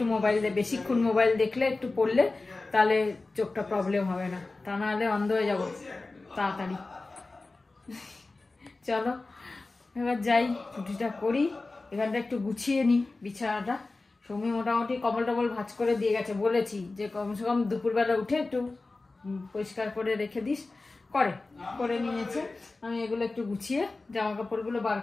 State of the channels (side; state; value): right; quieter; 3.4 dB